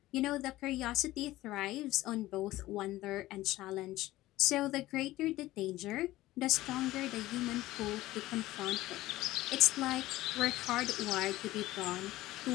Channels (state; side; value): quieter; right; 16.8 dB